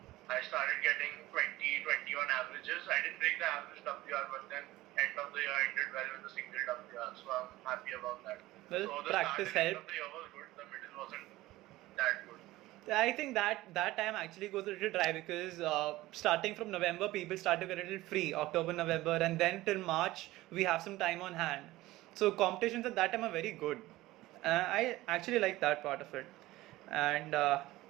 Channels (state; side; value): quieter; left; 17.6 dB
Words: I started getting 20, 21 averages. I didn't break the average WR, but then end of the year I did well with the single WR. So I'm happy about that. Well, So the practice start and end of helped. the year was good. The middle wasn't that good. I think that time actually goes a little dry because starting from November, people start to get a little free, October, November, and then till March, we have some time on hand. So competitions at that time are very good. I actually like that part of it. And